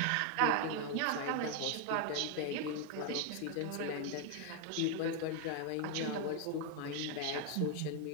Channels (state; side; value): different; both; correlation 0.01